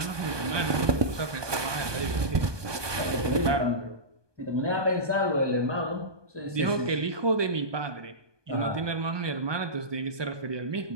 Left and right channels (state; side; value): late; left; 1.2 ms